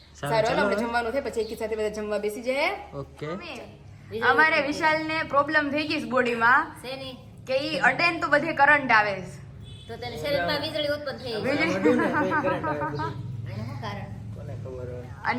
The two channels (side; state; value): both; identical; correlation 1.00